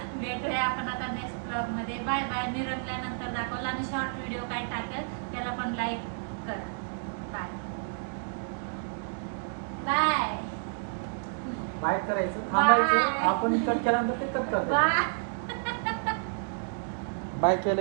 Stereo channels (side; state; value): left; silent; digital silence